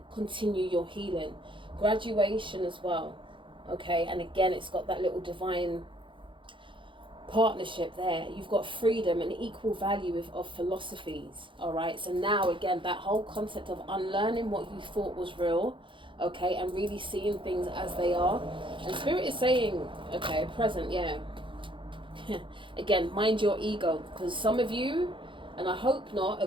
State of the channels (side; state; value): left; late; 0.24 ms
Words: continue your healing. Graduation as well, okay? And again, it's got that little divine partnership there. You've got freedom and equal value of philosophies, all right? So now, again, that whole concept of unlearning what you thought was real, okay, and really seeing things as they are. And Spirit is saying, okay, present, yeah. Again, mind your ego, because some of you, and I hope not, are